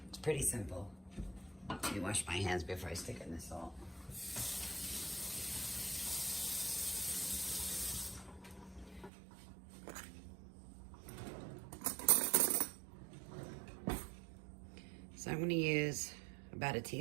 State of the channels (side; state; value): left; drops out; at 9.1 s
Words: pretty simple. Let me wash my hands before I stick it in the salt. So I'm going to use about a